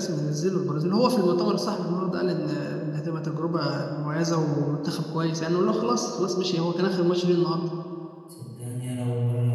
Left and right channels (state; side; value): identical; both; correlation 1.00